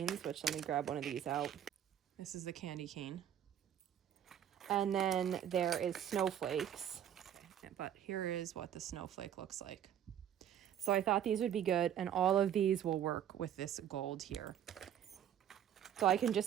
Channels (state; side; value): quieter; left; 10.1 dB